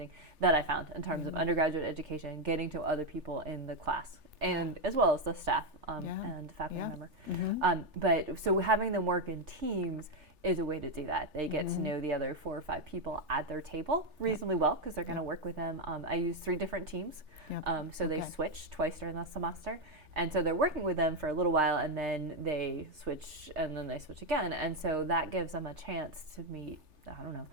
that I found in terms of undergraduate education, getting to other people in the class, and as well as the staff and faculty member. But so having them work in teams is a way to do that. They get to know the other 4 or 5 people at their table reasonably well because they're going to work with them. I use 3 different teams, so they switch twice during the semester. And so they're working with them for a little while, and then they switch, and then they switch again. And so that gives them a chance to meet,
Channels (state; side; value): late; left; 3.4 ms